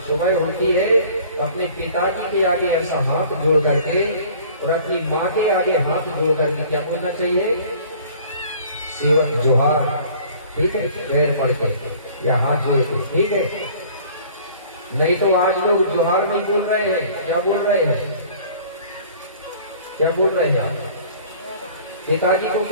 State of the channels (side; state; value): both; inverted; correlation -0.50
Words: सुबह होती है तो अपने पिताजी के आगे ऐसा हाथ जोड़ करके और अपनी माँ के आगे हाथ जोड़ करके क्या बोलना चाहिए, सेवक जोहार, ठीक है, पैर पड़ के या हाथ जोड़ के, ठीक है। नहीं तो आज लोग जोहार नहीं बोल रहे हैं, क्या बोल रहे हैं, क्या बोल रहे हैं, पिताजी को